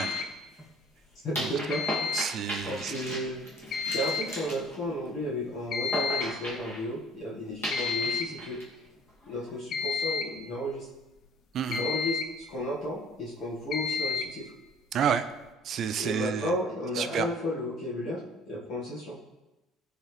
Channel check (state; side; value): normal; both; correlation 0.53